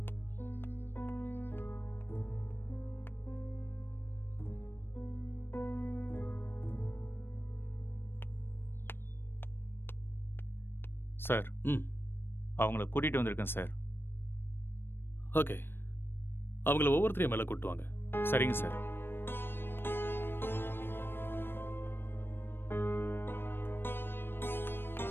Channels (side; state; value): right; late; 0.10 ms